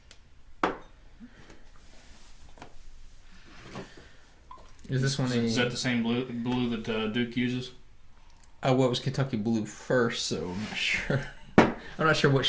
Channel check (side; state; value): both; identical; correlation 1.00